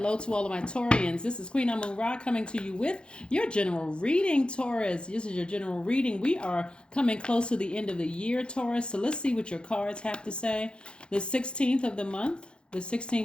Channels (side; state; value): right; late; 0.053 ms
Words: to all of my Taurians. This is Queen Amun Ra coming to you with your general reading, Taurus. This is your general reading. We are coming close to the end of the year, Taurus. So let's see what your cards have to say. The 16th of